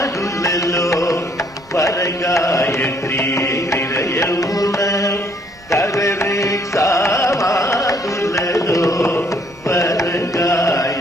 వరగాయత్రి హృదయమున కరరే సామానులలో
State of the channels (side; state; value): both; normal; correlation 0.65